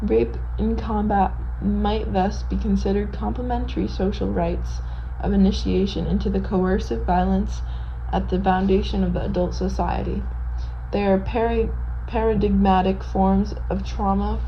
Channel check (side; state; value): both; identical; correlation 1.00